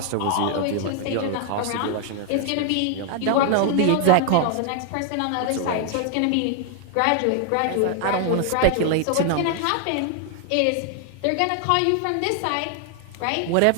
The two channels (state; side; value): different; both; correlation 0.00